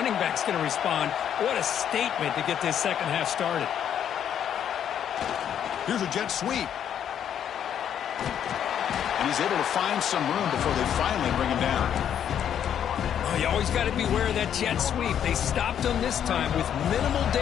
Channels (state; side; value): quieter; right; 9.3 dB